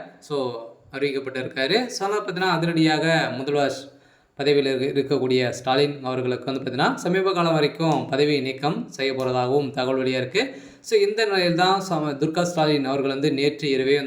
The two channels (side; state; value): both; identical; correlation 1.00